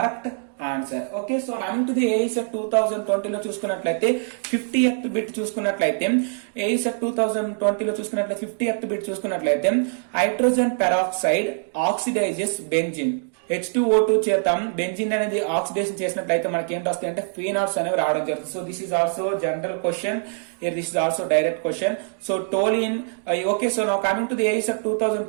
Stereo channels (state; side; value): silent; left; 63 dB below the other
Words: answer. Okay, so coming to the AISET 2020 లో చూసుకున్నట్లయితే 50th బిట్ చూసుకున్నట్లయితే AISET 2020 లో చూసుకున్నట్లయితే 50th బిట్ చూసుకున్నట్లయితే hydrogen peroxide oxidises benzene H2O2 చేత బెంజిన్ అనేది ఆక్సిడేషన్ చేసినట్లయితే మనకి ఏంటి వస్తాయి అంటే ఫీనాల్స్ అనేవి రావడం జరుగుతుంది. So this is also general question, this is also direct question. So toluene. Okay, so now coming to the AISET